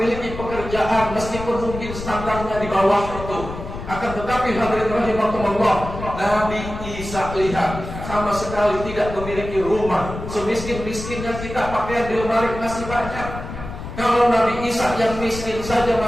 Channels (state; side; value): noise; left; rumble, 9 dB below the sound